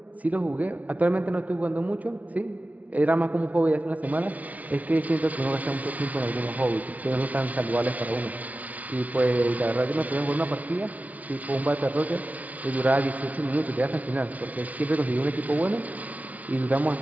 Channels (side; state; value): left; late; 0.071 ms